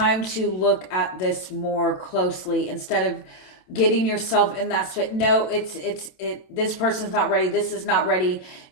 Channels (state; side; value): late; right; 27 ms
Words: to look at this more closely instead of getting yourself in that space. No, this person's not ready. This is not ready.